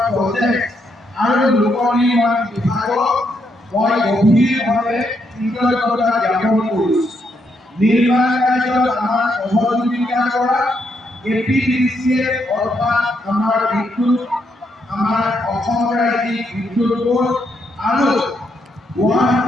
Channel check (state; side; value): normal; both; correlation 0.77